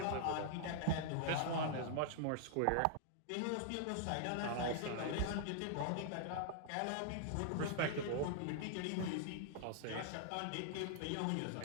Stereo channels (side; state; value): both; different; correlation -0.01